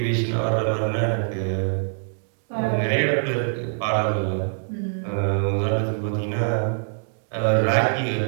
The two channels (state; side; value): silent; left; digital silence